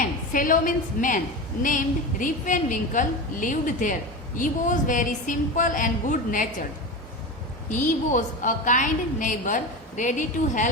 fellow means man, named Rip Van Winkle lived there. He was very simple and good-natured. He was a kind neighbor, ready to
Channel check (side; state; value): both; normal; correlation 0.23